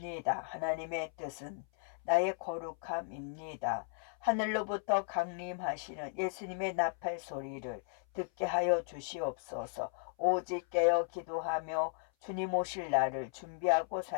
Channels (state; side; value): silent; right; 54 dB below the other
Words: 하나님의 뜻은 나의 거룩함입니다. 하늘로부터 강림하시는 예수님의 나팔 소리를 듣게 하여 주시옵소서. 오직 깨어 기도하며 주님 오실 날을 준비하고